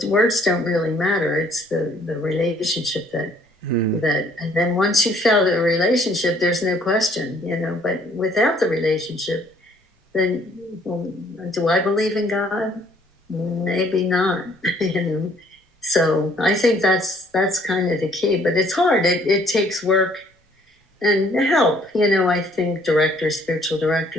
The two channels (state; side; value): normal; both; correlation 0.62